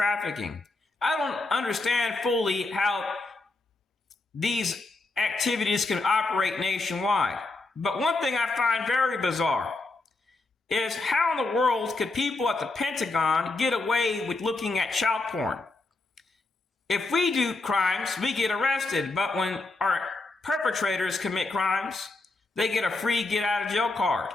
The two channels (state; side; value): quieter; right; 3.3 dB